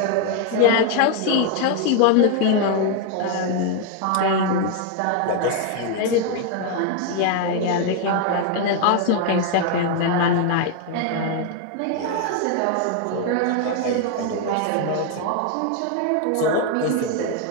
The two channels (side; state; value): both; different; correlation 0.01